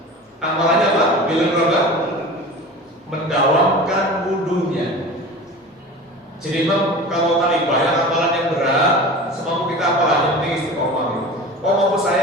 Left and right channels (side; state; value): both; normal; correlation 0.35